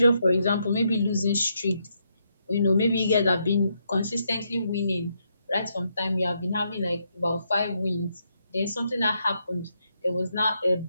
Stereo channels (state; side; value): inverted; both; correlation -0.79